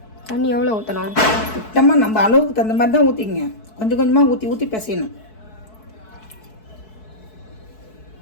தண்ணி எவ்வளோ ஊற்றணும்? சுத்தமாக நம்ம அளவுக்கு தகுந்த மாதிரி தான் ஊற்றிங்க. கொஞ்சம் கொஞ்சமாக ஊற்றி ஊற்றி பிசையணும்.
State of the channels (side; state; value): right; late; 4.6 ms